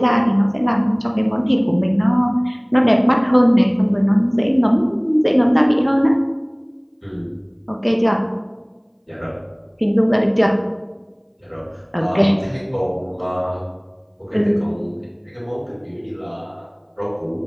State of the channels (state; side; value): identical; both; correlation 1.00